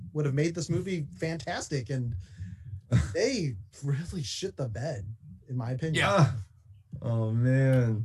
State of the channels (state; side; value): identical; both; correlation 1.00